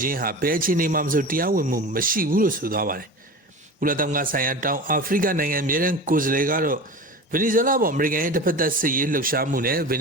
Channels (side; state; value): both; normal; correlation 0.32